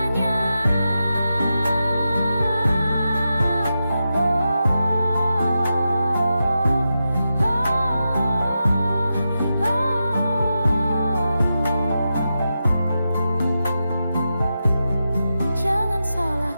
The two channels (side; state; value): both; inverted; correlation -0.89